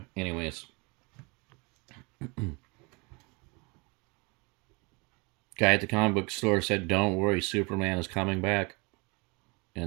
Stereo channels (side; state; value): left; quieter; 29.0 dB